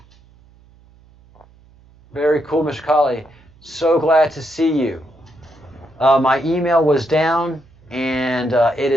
Very cool, Mr. Colley. So glad to see you. My email was down, and it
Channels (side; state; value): right; noise; hum, 28 dB below the sound